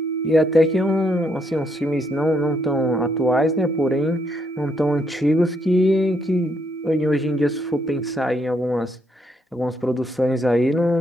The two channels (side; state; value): both; normal; correlation 0.74